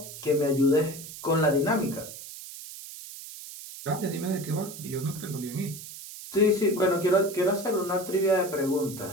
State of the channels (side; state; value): right; noise; hiss, 13 dB below the sound